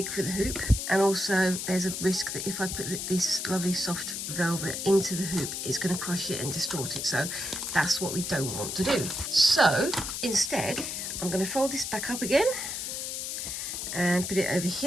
for the hoop, and also there's a risk that if I put this lovely soft velvet into the hoop, it's going to crush it and distort it, so that's what we don't want to do. So instead I'm going to fold this back up again and put it over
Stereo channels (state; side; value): noise; left; hiss, 4 dB below the sound